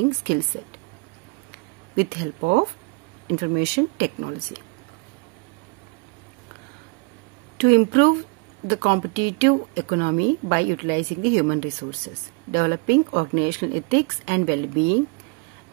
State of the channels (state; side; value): quieter; left; 31.5 dB